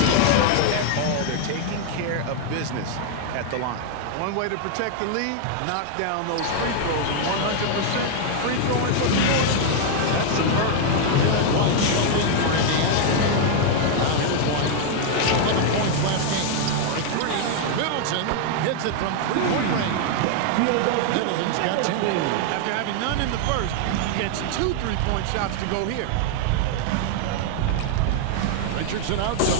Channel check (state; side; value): different; both; correlation 0.00